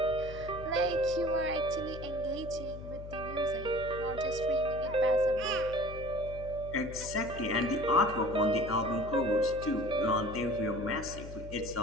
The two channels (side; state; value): left; noise; hum, 11 dB below the sound